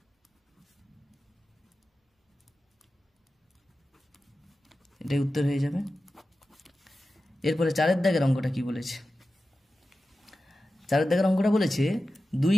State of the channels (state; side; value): normal; both; correlation 0.93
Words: এটাই উত্তর হয়ে যাবে। এরপরে 4 দাগের অঙ্কটা কি বলেছে? 4 দাগের অঙ্কটা বলেছে 2